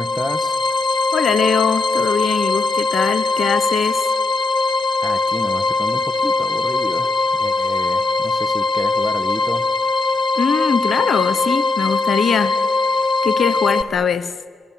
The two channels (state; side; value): quieter; right; 3.7 dB